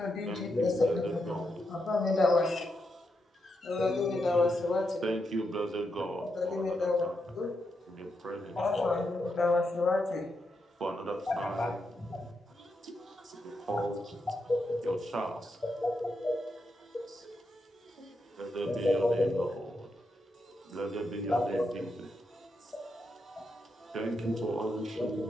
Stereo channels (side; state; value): both; normal; correlation 0.83